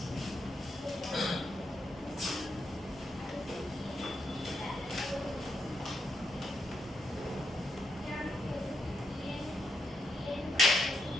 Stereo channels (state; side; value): normal; both; correlation 0.81